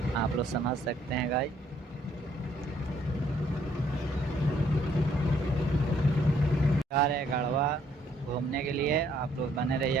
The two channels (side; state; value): both; normal; correlation 0.66